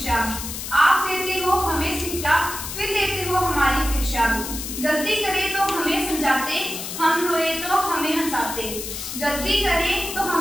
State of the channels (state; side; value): noise; left; hiss, 7 dB below the sound